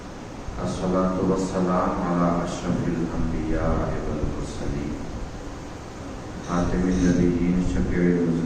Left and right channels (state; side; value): identical; both; correlation 1.00